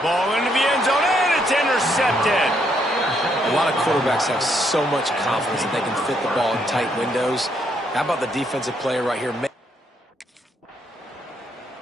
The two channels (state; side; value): normal; both; correlation 0.74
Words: Ball into the end zone, and it's intercepted. A lot of quarterbacks have so much confidence that they can fit the ball in tight windows. How about the defensive player right here?